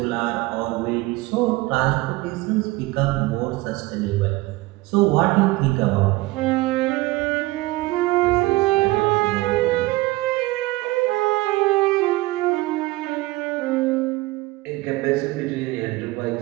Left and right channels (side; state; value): left; quieter; 20.4 dB